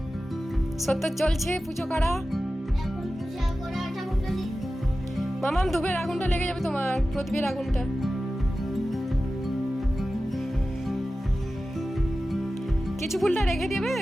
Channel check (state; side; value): normal; both; correlation 0.94